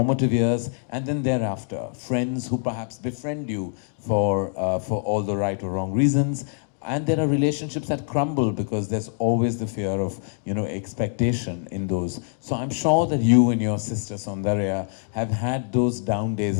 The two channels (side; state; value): right; silent; 62 dB below the other